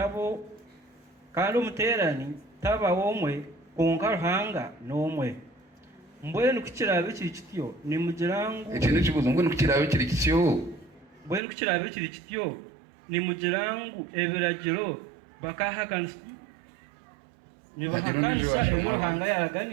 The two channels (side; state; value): left; drops out; at 11.4 s